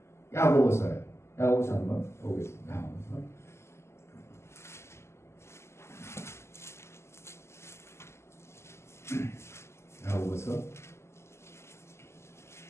야고보서 한번 보겠습니다. 야고보서 야고보서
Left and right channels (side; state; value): right; late; 0.13 ms